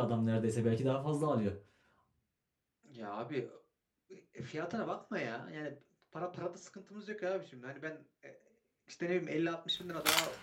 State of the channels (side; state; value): both; identical; correlation 1.00